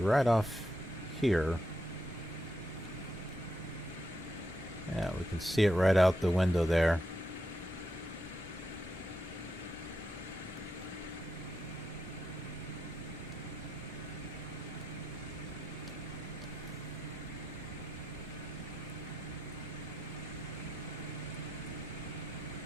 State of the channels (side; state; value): both; normal; correlation 0.83